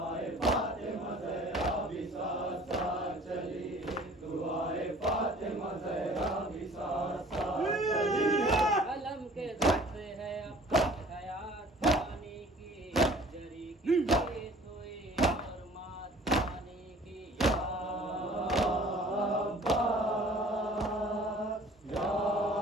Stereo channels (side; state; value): both; normal; correlation 0.50